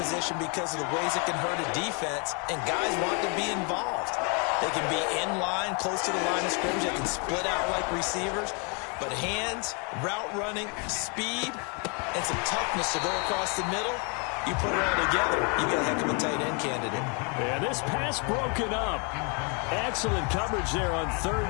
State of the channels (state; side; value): quieter; right; 35.6 dB